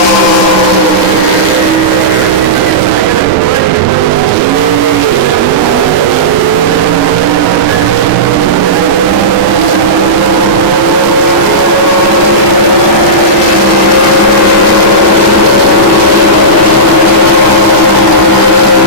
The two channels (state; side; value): normal; both; correlation -0.15